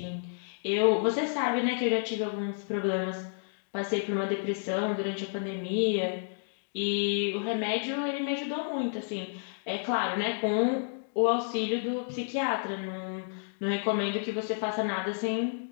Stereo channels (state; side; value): silent; right; digital silence